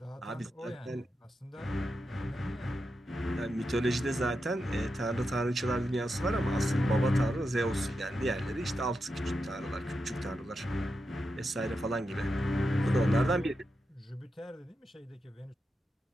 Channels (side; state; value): both; normal; correlation 0.87